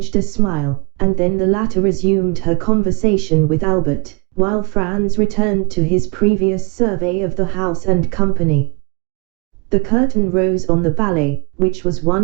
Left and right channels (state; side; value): quieter; left; 30.1 dB